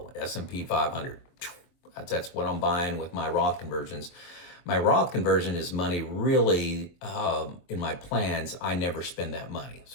S&P 500. That's what I'm buying with my Roth conversions. My Roth conversion is money really in my plans. I never spend that money.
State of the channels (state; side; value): late; right; 22 ms